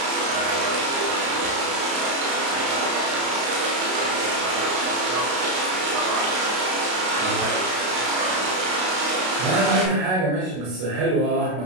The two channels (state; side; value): late; left; 32 ms